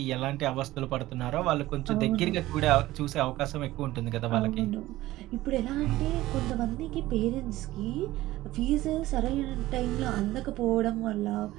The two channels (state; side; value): quieter; left; 16.7 dB